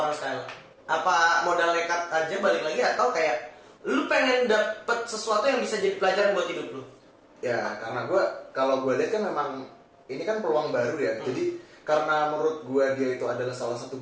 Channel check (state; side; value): identical; both; correlation 1.00